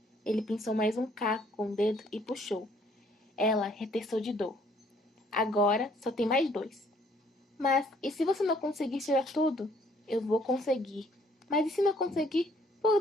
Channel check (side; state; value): both; normal; correlation 0.63